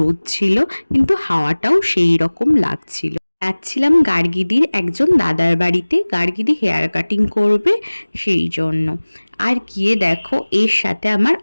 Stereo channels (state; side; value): inverted; both; correlation -1.00